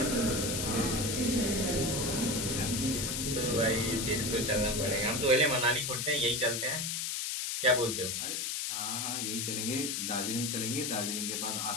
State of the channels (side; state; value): left; noise; hiss, 1 dB below the sound